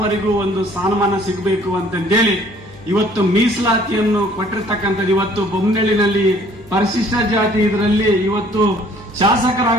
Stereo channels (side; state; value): left; noise; hum, 25 dB below the sound